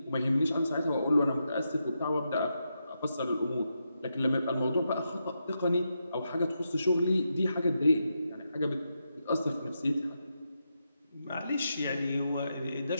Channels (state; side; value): inverted; both; correlation -0.85